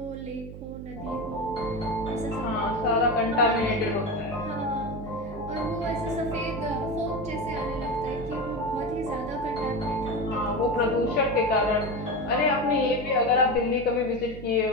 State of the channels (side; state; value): right; noise; hum, 12 dB below the sound